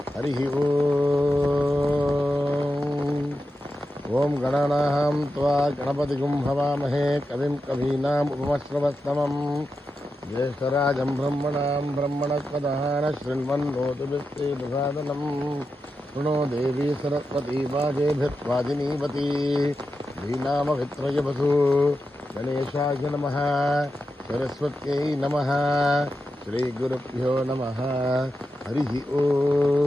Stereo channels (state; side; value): normal; both; correlation 0.89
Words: హరి ఓం. ఓం గణానాం త్వా గణపతిగుం హవామహే కవిం కవీనాం ఉపమశ్రవస్తమం జ్యేష్ఠరాజం బ్రహ్మణాం బ్రహ్మణస్పదః శృణ్వన్నోతిభిశ్రీదసాదనం శృణో దేవీ సరస్వతీ వాజేభిర్వాజినీవతి శ్రీనామవిత్రయవసు గణేశాయ నమః. సరస్వత్యై నమః. శ్రీ గురుభ్యో నమః. హరి ఓం.